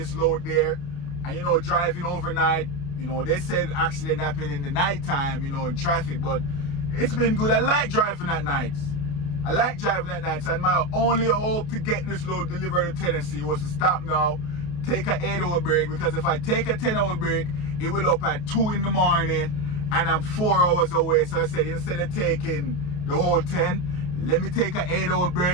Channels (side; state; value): right; late; 29 ms